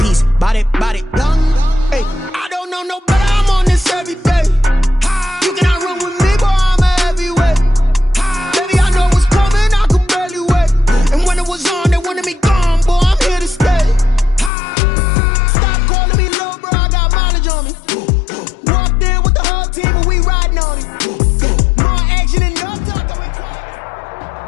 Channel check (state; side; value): drops out; right; at 14.5 s